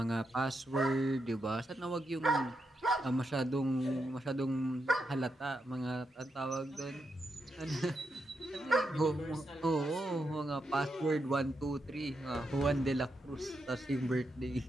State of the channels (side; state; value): both; normal; correlation 0.84